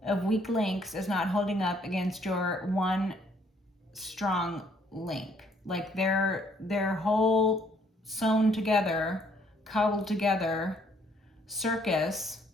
of weak links is not holding up against your one strong link. Like their whole sewn together, cobbled together circus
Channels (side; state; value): both; normal; correlation 0.65